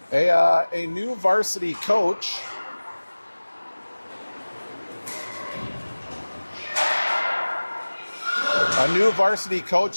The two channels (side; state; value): both; inverted; correlation -1.00